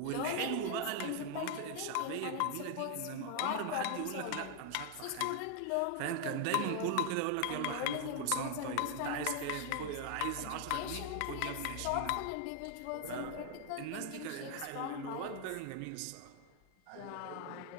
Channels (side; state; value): both; different; correlation 0.00